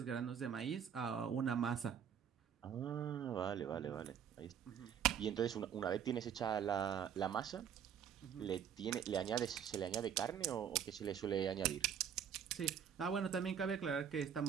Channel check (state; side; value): quieter; left; 8.5 dB